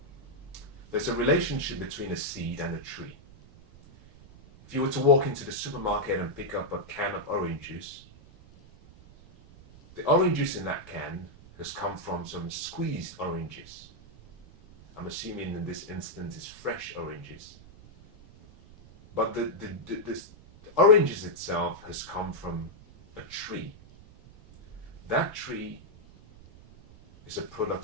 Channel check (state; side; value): noise; right; rumble, 21 dB below the sound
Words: there's a relationship between a seed and a tree. If you were to walk into the supermarket and pick up a can of orange juice, the orange juice in that can has come from some squeezed oranges. I'm assuming in this instance it's fresh oranges. But the oranges itself has come from a tree. That tree is a